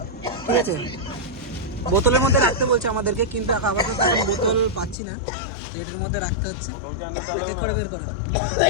ঠিক আছে। বোতলের মধ্যে রাখতে বলছে আমাদেরকে, কিন্তু আপাতত এখন বোতল পাচ্ছি না, তো এটার মধ্যে রাখতে হচ্ছে। এক করে বের করা,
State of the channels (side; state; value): right; drops out; at 5.0 s